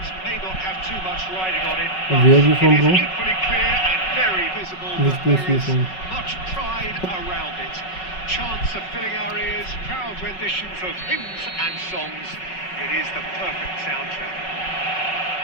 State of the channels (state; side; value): late; right; 5.4 ms